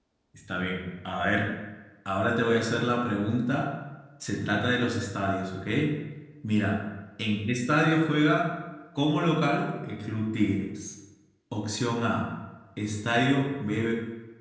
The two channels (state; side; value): identical; both; correlation 1.00